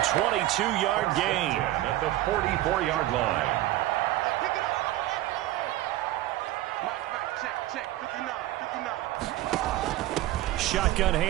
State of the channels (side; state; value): left; quieter; 15.5 dB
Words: 22-yard gain. At the 44-yard line. Shotgun